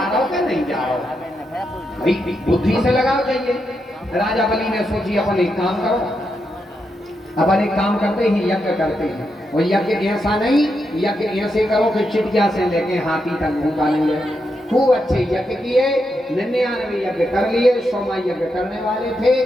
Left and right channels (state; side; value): normal; both; correlation 0.84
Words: रहा हो कि नहीं जा रहा हो, भाई बुद्धि से लगाओ चाहिए। राजा बलि ने सोची अपन एक काम करो, अपन एक काम करते ही यज्ञ करते हैं, और यज्ञ ऐसा नहीं, यज्ञ ऐसे करो कि चिड़िया से लेके हाथी तक भूखा नहीं है, खूब अच्छे यज्ञ किए, 99 यज्ञ कर लिए, 100 यज्ञ करने वाले थे।